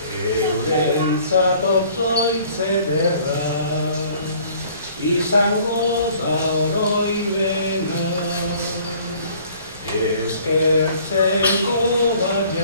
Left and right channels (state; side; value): inverted; both; correlation -0.55